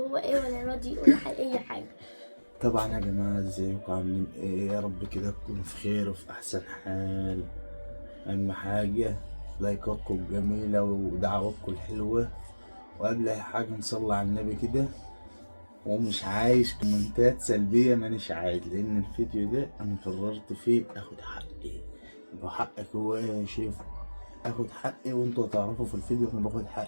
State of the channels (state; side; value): inverted; both; correlation -1.00